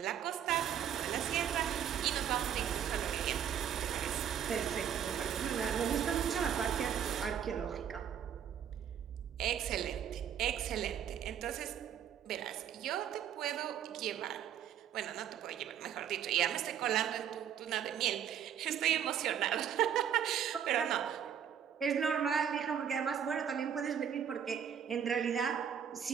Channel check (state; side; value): quieter; left; 8.9 dB